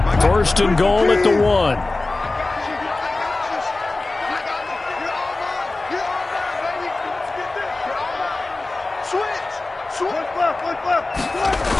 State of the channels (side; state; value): right; quieter; 3.2 dB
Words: First and goal at the 1.